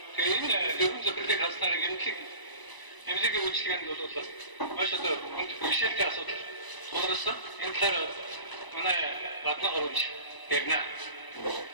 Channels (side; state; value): right; late; 1.0 ms